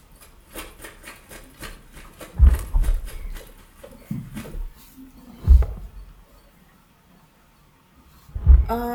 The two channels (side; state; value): both; identical; correlation 1.00